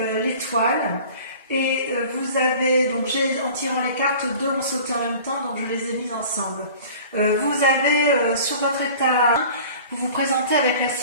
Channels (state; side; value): inverted; both; correlation -0.43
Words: l'étoile. Et vous avez, donc en tirant les cartes, deux ont sauté en même temps, donc je les ai mises ensemble. Vous avez sur votre état, vous vous présentez avec la